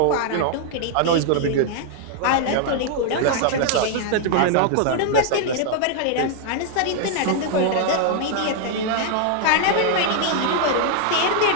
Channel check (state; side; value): different; both; correlation 0.00